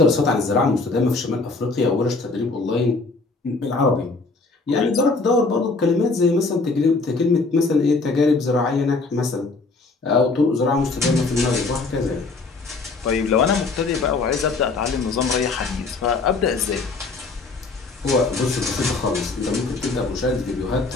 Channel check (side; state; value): right; quieter; 3.8 dB